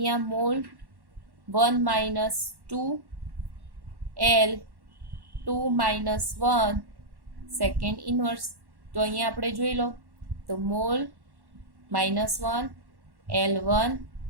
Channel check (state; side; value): late; left; 1.1 ms